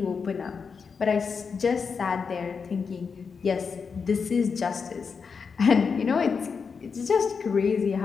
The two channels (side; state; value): right; quieter; 5.6 dB